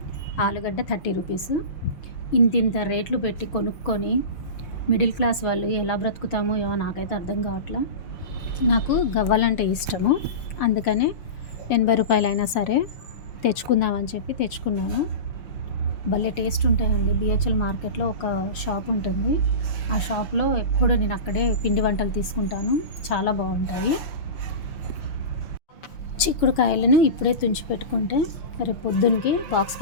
ఆలుగడ్డ 30 రూపీస్. ఇంతింత రేట్లు పెట్టి కొనుక్కొని మిడిల్ క్లాస్ వాళ్ళు ఎలా బ్రతుకుతామో ఏమో నాకైతే అర్థం కావట్లా. నాకు గవ్వలంటే ఇష్టము, అందుకనే 80 రూపాయలైనా సరే తెచ్చుకుందామని చెప్పి తెచ్చుకున్నాను. భలే టేస్ట్ ఉంటాయండి. బిహెచ్ఎల్ మార్కెట్లో ఒక షాప్ ఉంటుంది. ఆ షాప్లో ఎప్పుడు నేను అక్కడే పిండి వంటలు తీసుకుంటాను. చాలా బాగుంటాయి. చిక్కుడుకాయలను ఇప్పుడే తుంచి పెట్టుకుంటే రేపు పొద్దున్నకి బాక్స్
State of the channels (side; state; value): right; late; 6.3 ms